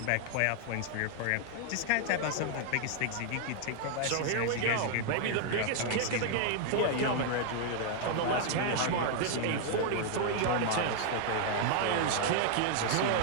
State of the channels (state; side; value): different; both; correlation 0.00